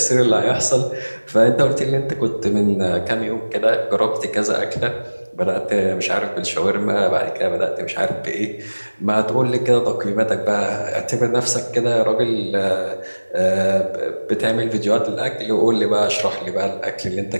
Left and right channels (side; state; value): both; inverted; correlation -1.00